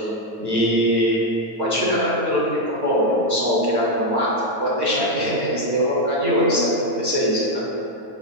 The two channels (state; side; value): late; left; 9.2 ms